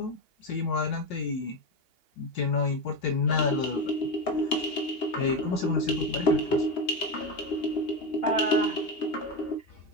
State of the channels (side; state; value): right; late; 2.8 ms